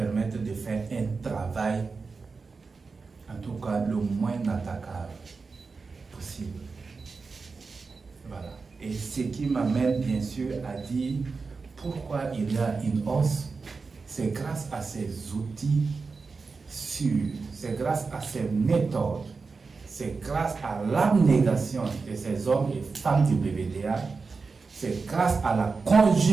de faire un travail, en tout cas, le moins attaquable possible. Voilà. Et ce qui m'amène bien sûr à dire pourquoi il y a une hausse, c'est grâce à ces outils sûrs, c'est grâce à ces méthodes, c'est grâce à l'abnégation de ces hommes et femmes du BVDA, c'est grâce à la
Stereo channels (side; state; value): left; quieter; 4.5 dB